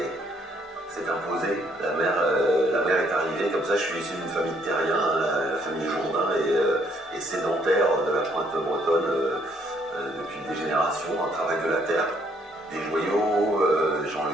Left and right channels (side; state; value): both; normal; correlation 0.67